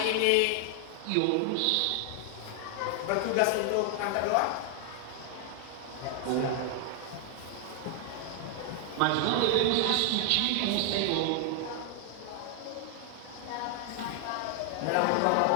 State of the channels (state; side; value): different; both; correlation 0.00